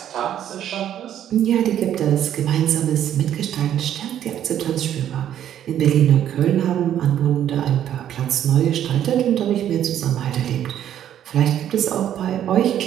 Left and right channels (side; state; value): left; quieter; 10.6 dB